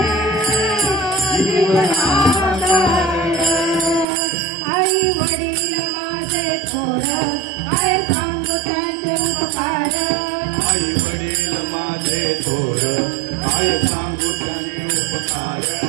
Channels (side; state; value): left; drops out; at 4.0 s